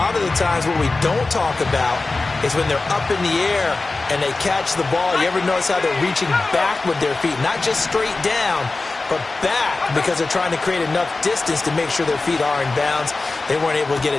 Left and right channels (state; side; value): quieter; right; 3.5 dB